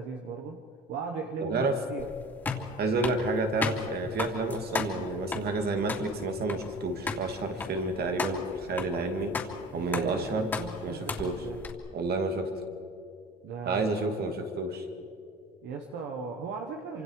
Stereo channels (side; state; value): both; normal; correlation 0.41